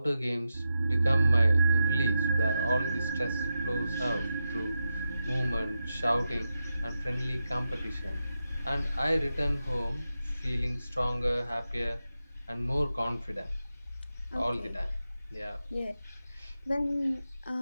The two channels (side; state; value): both; inverted; correlation -0.89